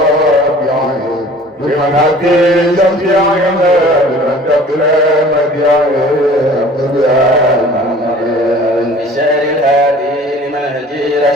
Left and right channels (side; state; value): both; normal; correlation 0.48